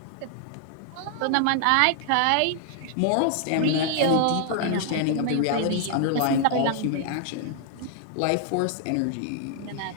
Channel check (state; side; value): different; both; correlation 0.00